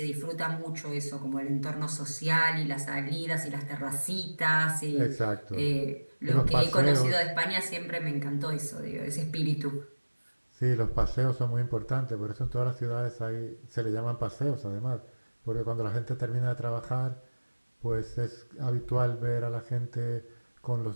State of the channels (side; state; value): both; inverted; correlation -1.00